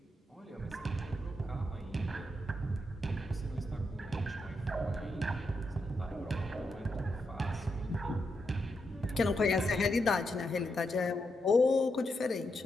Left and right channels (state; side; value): normal; both; correlation 0.83